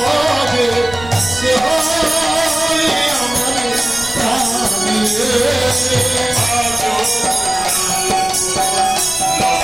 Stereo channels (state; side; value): noise; right; rumble, 15 dB below the sound